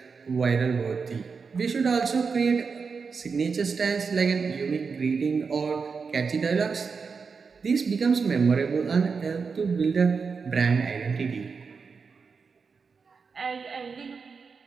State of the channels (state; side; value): quieter; left; 5.2 dB